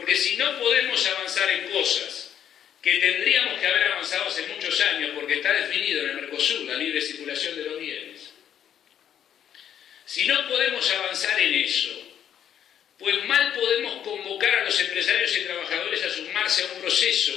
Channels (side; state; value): right; quieter; 9.6 dB